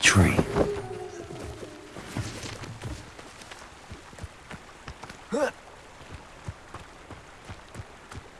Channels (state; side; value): identical; both; correlation 1.00